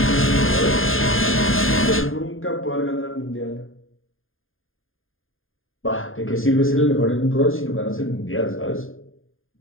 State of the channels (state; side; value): late; right; 0.59 ms